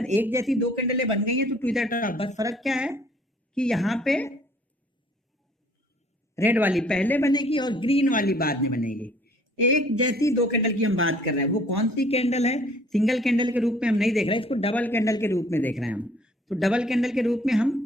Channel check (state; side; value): normal; both; correlation 0.57